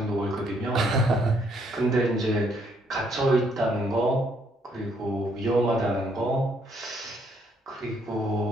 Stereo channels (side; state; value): both; normal; correlation 0.70